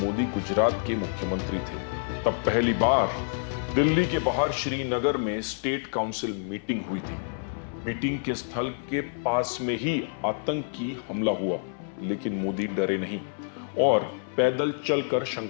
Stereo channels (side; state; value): right; silent; 60 dB below the other